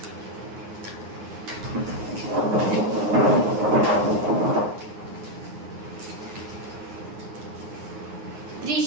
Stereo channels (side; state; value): left; late; 9.6 ms